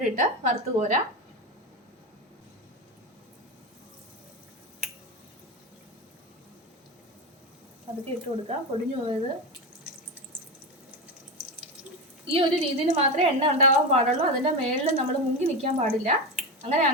ഇട്ട് വറുത്ത് കോരാം. അതൊക്കെ ഇട്ട് കൊടുക്കാം, പൊടിഞ്ഞു പോയത്. ഈ ഒരു രീതിയിൽ മാത്രമേ എണ്ണ ഉണ്ടാവാൻ പാടുള്ളൂ. അതിൻ്റെ മേളിൽ നമ്മൾ മുങ്ങി നിൽക്കാൻ പാടില്ല.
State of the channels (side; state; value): both; normal; correlation 0.17